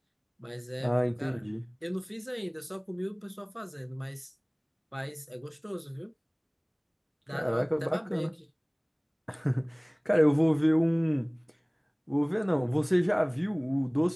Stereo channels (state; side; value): identical; both; correlation 1.00